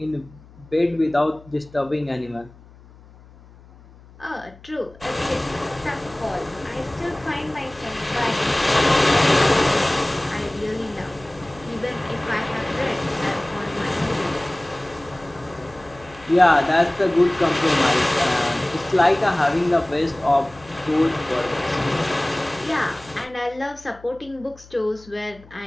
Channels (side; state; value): left; noise; hum, 23 dB below the sound